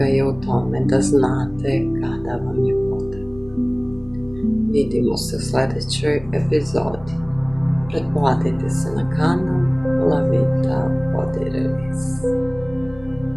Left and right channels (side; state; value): left; noise; rumble, 20 dB below the sound